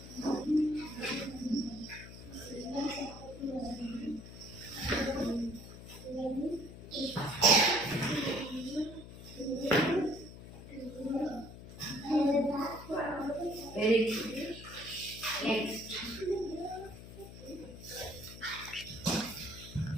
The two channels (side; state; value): left; noise; hum, 14 dB below the sound